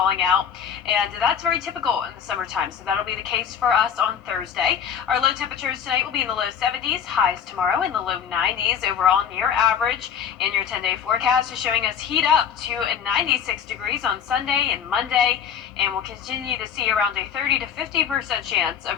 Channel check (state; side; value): quieter; right; 8.1 dB